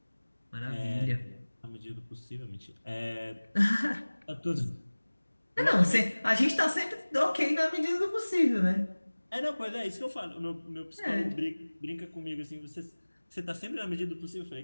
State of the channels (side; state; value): both; inverted; correlation -1.00